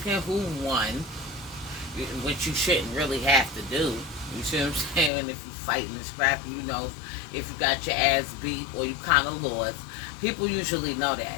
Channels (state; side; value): drops out; right; at 5.1 s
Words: who won, which you shouldn't really have to do. You see what I'm saying? If you fighting and scrapping, you know if you got your ass beat or you kind of lost. People usually know